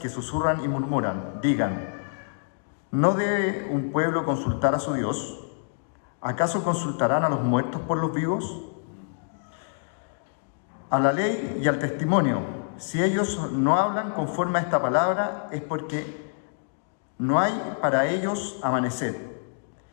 susurran y murmuran, digan, ¿no debe un pueblo consultar a su Dios? ¿Acaso consultarán a los muertos por los vivos? A la ley y al testimonio, si ellos no hablan conforme a esta palabra, es porque no hay para ellos amanecer,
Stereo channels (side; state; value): right; silent; digital silence